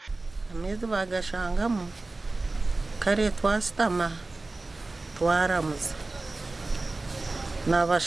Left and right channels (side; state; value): left; quieter; 3.2 dB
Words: Amezi bagashangamo kare twasitama twaramuza